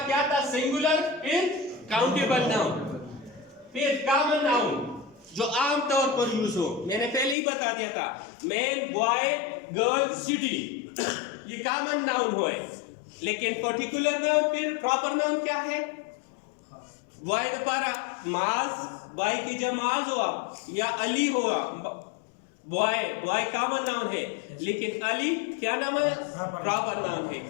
क्या था सिंगुलर फिर काउंटेबल नाउन फिर कॉमन नाउन जो आम तौर पर यूज हो मैंने पहले ही बता दिया था मैन बॉय गर्ल सिटी ये कॉमन नाउन हो लेकिन पर्टिकुलर नाउन फिर प्रॉपर नाउन क्या है बॉय दपारा माज बॉय की जमाज हुआ या अली हुआ बॉय कॉमन नाउन है लेकिन अली क्या नाम है प्रॉपर नाउन है।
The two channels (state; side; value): drops out; right; at 7.4 s